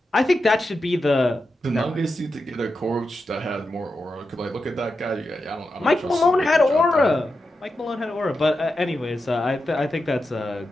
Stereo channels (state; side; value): normal; both; correlation 0.89